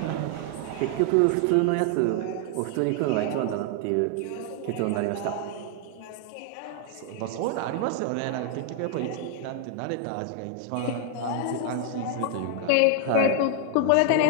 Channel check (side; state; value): both; different; correlation 0.00